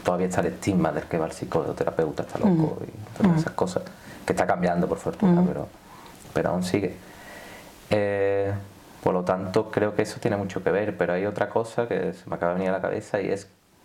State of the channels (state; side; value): identical; both; correlation 1.00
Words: todavía está el estigma del que va el psicólogo, terapeuta, está loco y todas esas cosas, que está cambiando por fortuna, pero aún sigue. Por lo tanto, creo que eso tiene mucho que ver, pero hay otra cosa que se me acaba de venir a la cabeza y es